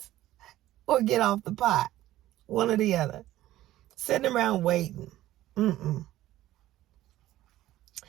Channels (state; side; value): quieter; left; 14.7 dB